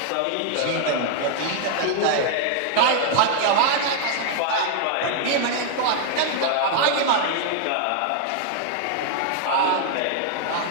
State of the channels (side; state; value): both; different; correlation 0.00